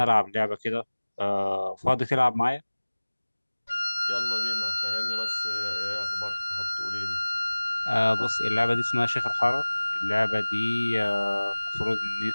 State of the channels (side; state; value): both; inverted; correlation -1.00